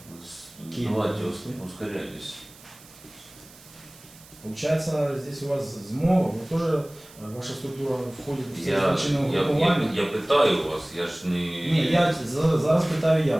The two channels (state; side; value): noise; right; hiss, 22 dB below the sound